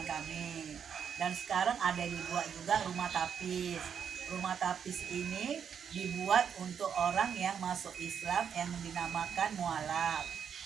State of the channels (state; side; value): quieter; left; 7.6 dB